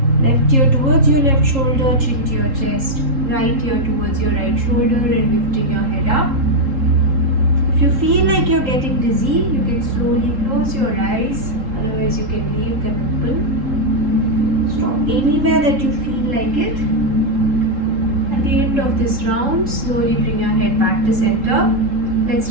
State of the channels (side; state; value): left; late; 3.7 ms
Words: Left ear towards your left shoulder, chin to your chest. Right ear towards your right shoulder and lifting your head up. If you feel like you're getting dizzy, you can slowly close your eyes. Otherwise, you can leave them open. Stop anywhere that you feel like it. At the end of this round, slowly bring your head back to center. Let's